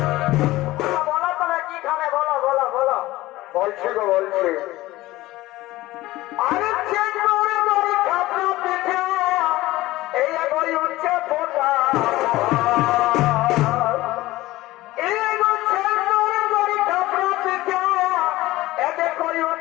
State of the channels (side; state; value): right; quieter; 17.7 dB